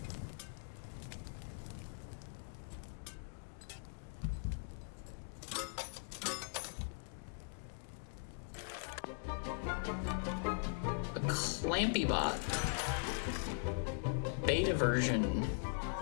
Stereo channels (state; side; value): silent; right; digital silence